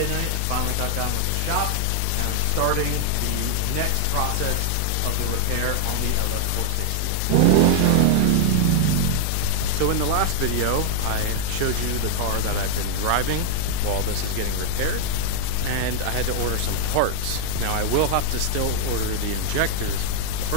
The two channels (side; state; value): both; different; correlation 0.00